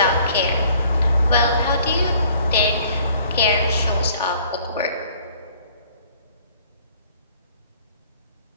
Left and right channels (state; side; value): inverted; both; correlation -0.57